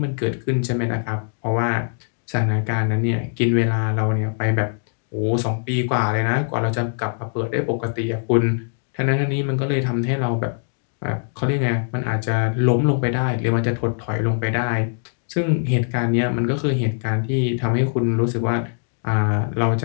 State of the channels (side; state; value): right; silent; digital silence